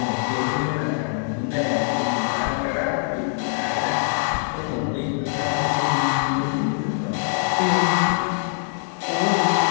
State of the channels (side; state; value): right; silent; digital silence